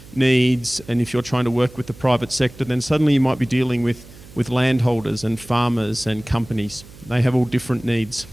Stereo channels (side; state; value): right; noise; hum, 20 dB below the sound